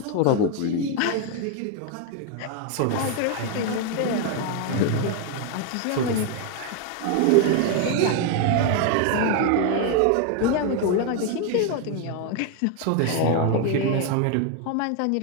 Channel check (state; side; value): different; both; correlation 0.01